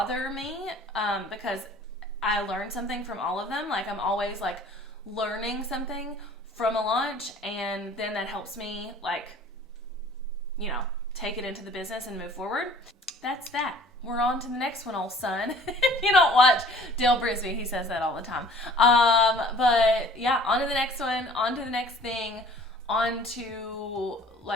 me because I learned something from all of them. Like, I'm always like learning something from a launch, and then that helps me, like, you know, take it into the business and move forward. That's that. We're on to the next one, old son. If you don't watch Dale Brisby, he says that all the time. But yeah, on to the next one, on to the next thing, on to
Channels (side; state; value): both; normal; correlation 0.50